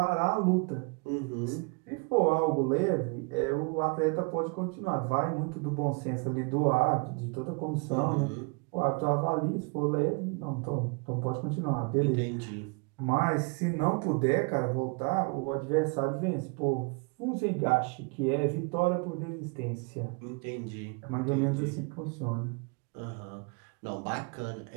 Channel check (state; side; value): quieter; left; 32.3 dB